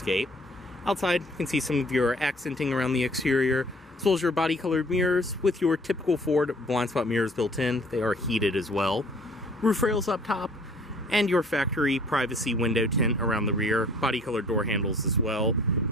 Outside, you can see some of your accenting around the exterior, as well as your body colored mirrors with your typical Ford blind spot mirrors built in. They are heated as well. Roof rails up top, and your factory privacy window tint around the rear, body colored door handles as well. And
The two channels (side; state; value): both; normal; correlation 0.55